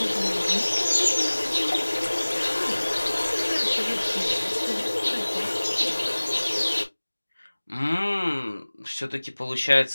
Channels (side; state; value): both; inverted; correlation -1.00